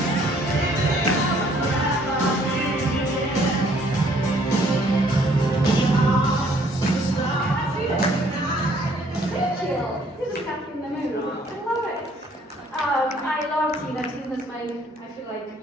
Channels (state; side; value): normal; both; correlation 0.62